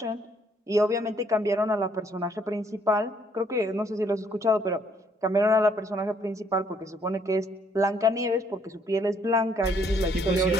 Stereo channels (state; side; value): normal; both; correlation 0.67